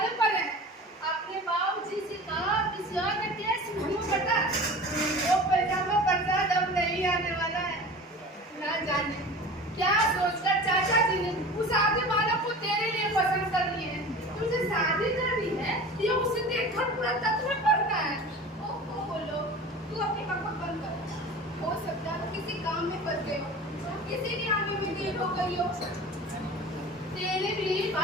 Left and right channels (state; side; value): normal; both; correlation 0.37